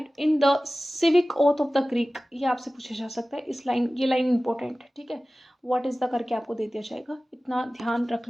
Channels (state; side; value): normal; both; correlation 0.97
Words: in the civic oath of the Greek, ये आपसे पूछा जा सकता है, इस लाइन, ये लाइन इंपॉर्टेंट है, ठीक है। व्हाट इज द करके आपको दे दिया जाएगा, इतना ध्यान रख